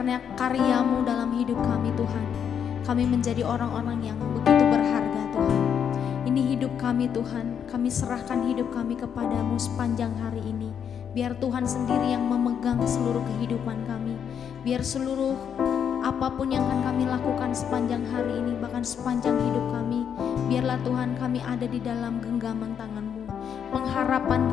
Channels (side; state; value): right; quieter; 8.0 dB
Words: karya-Mu dalam hidup kami Tuhan, kami menjadi orang-orang yang begitu berharga Tuhan. Ini hidup kami Tuhan, kami serahkan hidup kami kepadamu sepanjang hari ini. Biar Tuhan sendiri yang memegang seluruh kehidupan kami. Biar seluruh apapun yang akan kami lakukan sepanjang hari ini, bahkan sepanjang hidup kami, biarlah Tuhan kami ada di dalam genggaman tangan-Mu. Pengharapan